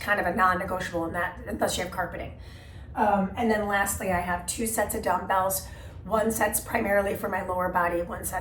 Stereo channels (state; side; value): identical; both; correlation 1.00